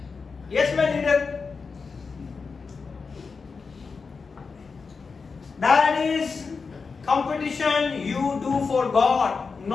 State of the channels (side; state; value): right; quieter; 4.9 dB